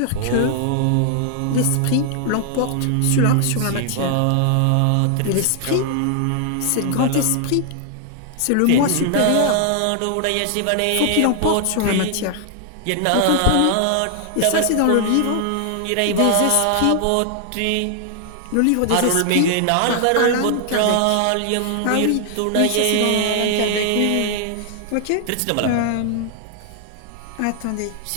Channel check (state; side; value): different; both; correlation 0.00